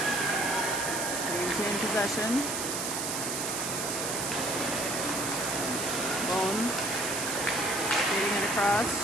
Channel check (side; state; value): right; noise; hiss, 2 dB below the sound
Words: Maintain possession. Bone skating it across.